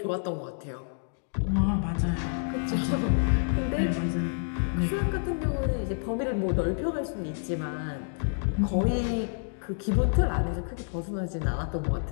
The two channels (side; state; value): right; silent; digital silence